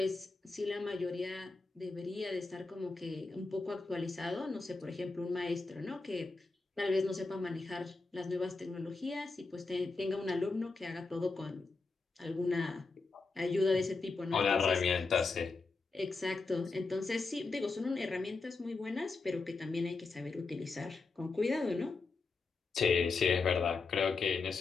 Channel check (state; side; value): quieter; right; 4.0 dB